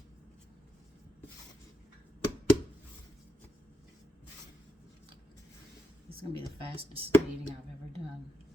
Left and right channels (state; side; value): normal; both; correlation 0.81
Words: This is going to be the fastest kneading I've ever done.